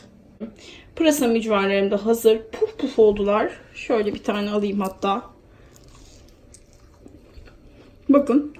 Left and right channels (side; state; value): both; identical; correlation 1.00